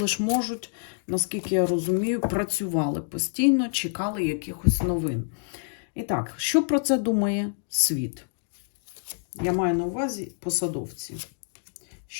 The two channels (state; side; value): silent; right; digital silence